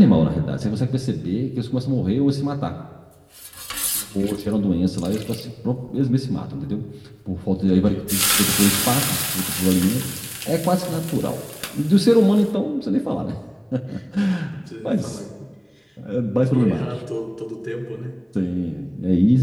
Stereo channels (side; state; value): both; identical; correlation 1.00